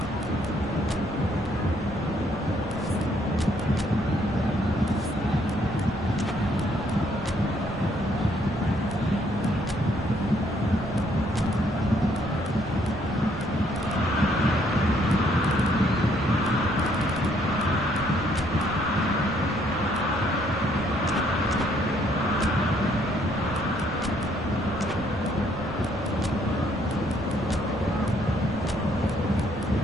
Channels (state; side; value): noise; right; rumble, 13 dB below the sound